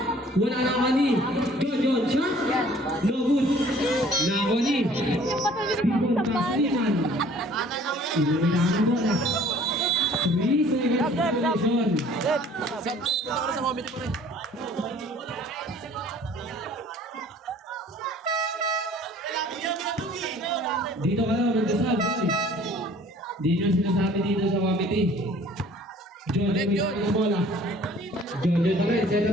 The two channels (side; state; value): both; normal; correlation 0.53